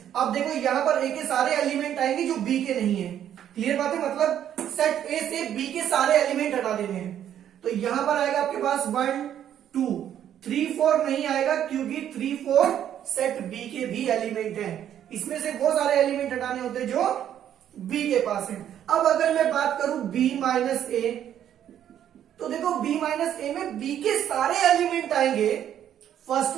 अब देखो यहां पर a के सारे एलिमेंट आएंगे जो b के नहीं है। क्लियर बात है। मतलब सेट a से b के सारे एलिमेंट हटा देने हैं। तो यहां पर आएगा आपके पास 1 2 3 4 नहीं आएगा, क्योंकि 3 4 सेट b के भी एलिमेंट है। इसमें से वो सारे एलिमेंट हटाने होते जो b के पास है। अब अगर मैं बात करूं b माइनस a, तो देखो b माइनस ए में b के सारे एलिमेंट आएंगे। फर्स्ट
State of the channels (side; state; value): left; quieter; 10.3 dB